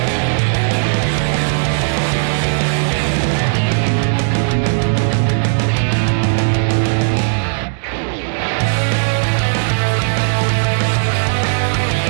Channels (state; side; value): silent; left; digital silence